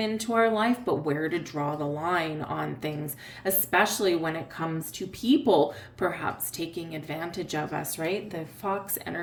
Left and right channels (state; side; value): identical; both; correlation 1.00